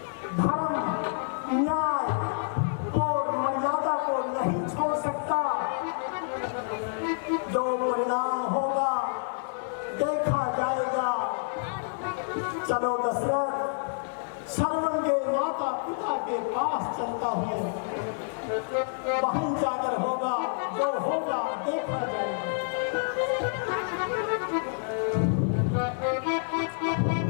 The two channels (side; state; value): right; silent; digital silence